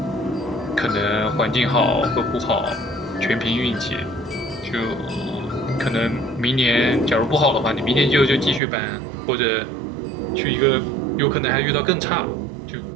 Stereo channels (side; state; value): left; drops out; at 8.6 s